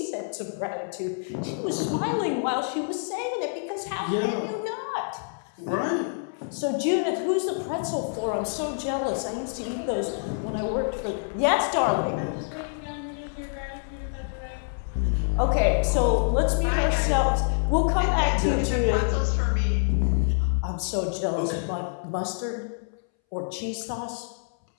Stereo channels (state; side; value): silent; right; 60 dB below the other